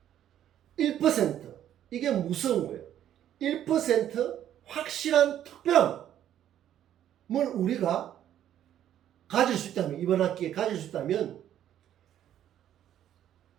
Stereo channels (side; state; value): left; quieter; 11.0 dB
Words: 1%. 이게 무서운 거예요. 1% 확실한 특별함을 우리가 가질 수 있다면, 이번 학기에 가질 수 있다면,